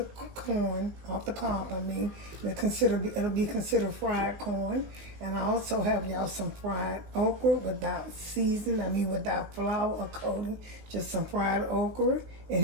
corn, off the cob, it'll be considered fried corn. And I also have y'all some fried okra without without flour or coating, just some fried okra. And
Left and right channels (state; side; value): late; left; 19 ms